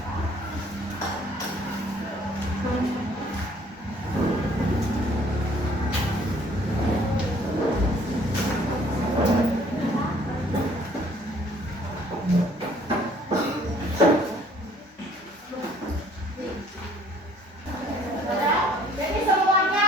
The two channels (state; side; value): normal; both; correlation 0.59